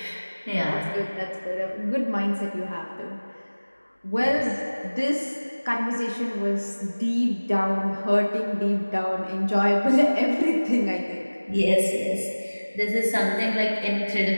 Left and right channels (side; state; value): both; inverted; correlation -1.00